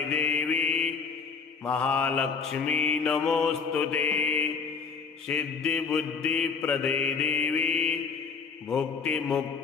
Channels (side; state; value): right; quieter; 5.5 dB